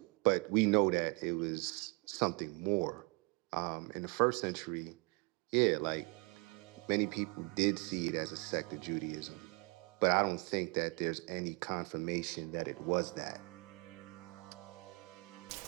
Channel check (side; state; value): left; quieter; 29.9 dB